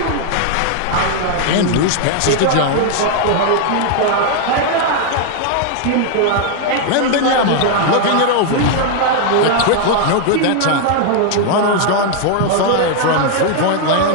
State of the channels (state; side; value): different; both; correlation 0.00